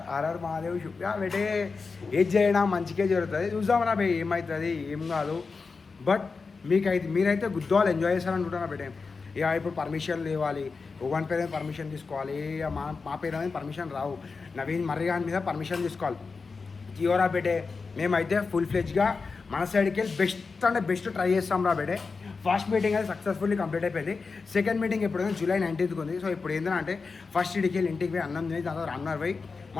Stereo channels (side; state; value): right; quieter; 4.6 dB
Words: ఆర్ఆర్ మహాదేవ్ చూపి బెటే, ఏది చేయడం మంచిగా జరుగుతుంది, చూద్దామరా బే ఏమవుతుంది ఏం కాదు. బట్ మీరైతే గుద్దవాళ్ళు ఎంజాయ్ చేస్తారనుకుంటున్నా బెటే. ఇక ఇప్పుడు పర్మిషన్ ఇవ్వాలి, ఒకని పేరు మీద పర్మిషన్ తీసుకోవాలి, ఇక మా పేరు మీద పర్మిషన్ రావు, నవీన్ మర్రిగాన్ మీద పర్మిషన్ తీసుకోవాలి. జియోరా బెటే మేమైతే ఫుల్ ఫ్లెజ్గా మన సైడ్కి వెళ్ళి బెస్ట్ అంటే బెస్ట్ ట్రై చేస్తాం రా బెటే. ఫస్ట్ మీటింగ్ అయితే సక్సెస్ఫుల్లీ కంప్లీట్ అయిపోయింది. సెకండ్ మీటింగ్ ఎప్పుడైనా జూలై 19th ఉంది. సో ఇప్పుడు ఏంటంటే ఫస్ట్ ఇడికి వెళ్ళి ఇంటికి పోయి అన్నం తిని దాని తర్వాత రన్నర్ పోయి